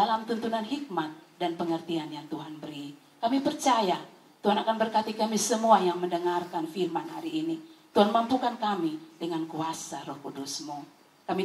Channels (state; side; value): identical; both; correlation 1.00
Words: tuntunan hikmat dan pengertian yang Tuhan beri. Kami percaya Tuhan akan berkati kami semua yang mendengarkan firman hari ini. Tuhan mampukan kami dengan kuasa Roh Kudus-Mu.